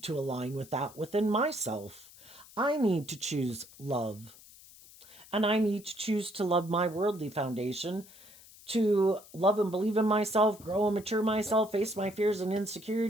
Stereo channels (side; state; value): left; noise; hiss, 21 dB below the sound